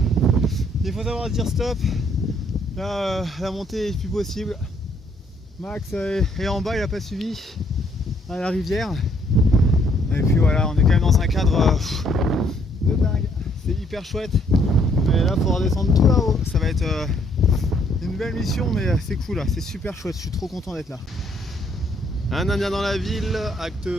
il faut savoir dire stop. Là, la montée est plus possible. Max est en bas, il a pas suivi à la rivière. Et puis voilà, on est quand même dans un cadre de dingue. C'est hyper chouette. Mais là, il faudra descendre tout là-haut. Ça va être une belle mission, mais c'est cool là. C'est super chouette. Je suis trop content d'être là. Un Indien dans la ville, acte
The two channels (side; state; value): both; normal; correlation 0.67